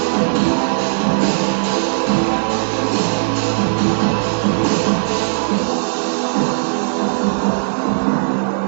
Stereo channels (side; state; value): left; silent; digital silence